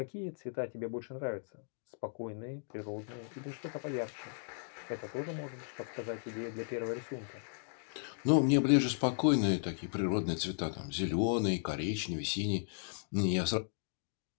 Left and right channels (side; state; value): right; silent; digital silence